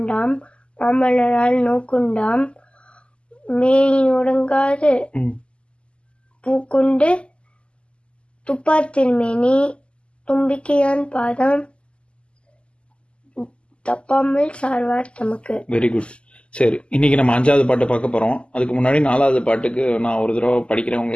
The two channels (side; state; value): right; late; 0.053 ms